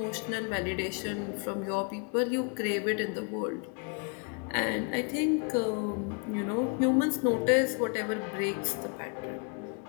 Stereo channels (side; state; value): right; quieter; 38.0 dB